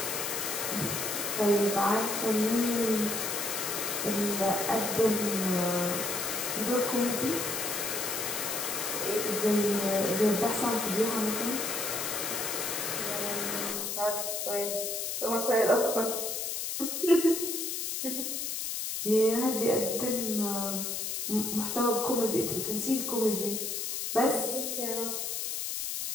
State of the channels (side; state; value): left; noise; hiss, 2 dB below the sound